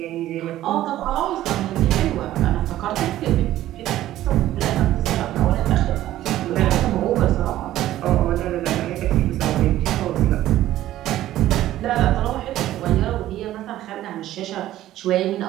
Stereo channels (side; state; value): left; quieter; 13.9 dB